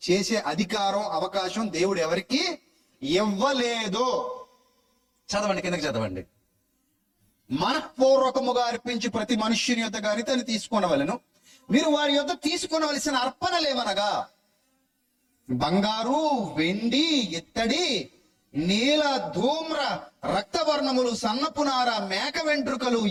చేసే అధికారం, అవకాశం దేవుడు ఎవరికి ఇవ్వలేదు. చదవండి, కిందకి చదవండి. మనఃపూర్వకముగా అర్పించి ప్రతి మనుష్యుని యొద్ద గాని తను తీసుకొనవలెను. మీరు వారి యొద్ద తీసుకొనవలసిన అర్పణలేవనగా బంగారు, వెండి, ఇత్తడి, నీల, ధూమ్ర, రక్తవర్ణములు, సన్నపునార, మేక వెంట్రుకలు,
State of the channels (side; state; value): both; identical; correlation 1.00